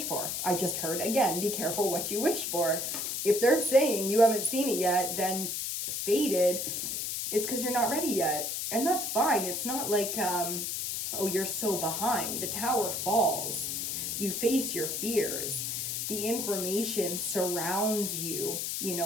for. I just heard again, be careful what you wish for. If they're saying you haven't seen it yet, then fated, it's because you're not ready yet. And that's fine. It's not like, oh, you're so behind. The tower falls. You face your fears. The information surrounds you, you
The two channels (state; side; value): noise; left; hiss, 2 dB below the sound